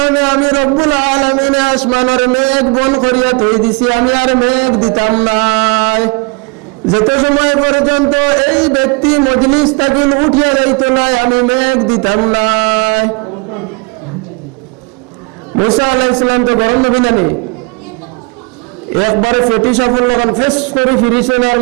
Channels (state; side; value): quieter; left; 29.8 dB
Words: আমি রব্বুল আলামিন আসমানের মেঘ বন করিয়া থই দিছি, আমি আর মেঘ দিতাম নাই। যত সময় পর্যন্ত এই ব্যক্তি মজলিস থেকে উঠিয়া যাইতো নাই, আমি মেঘ দিতাম নাই। মুসা আলাইহিস সালাম তো গরম নবী নানি, একবারে ফেটি সফল লাগান ফেস করে ফিরিছেন, আর